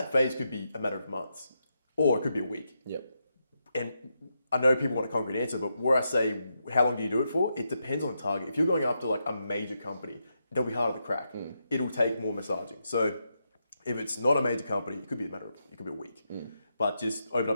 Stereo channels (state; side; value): inverted; both; correlation -0.84